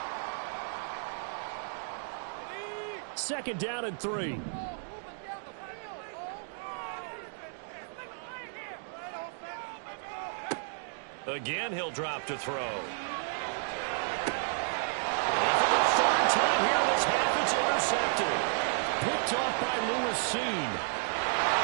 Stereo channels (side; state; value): left; silent; digital silence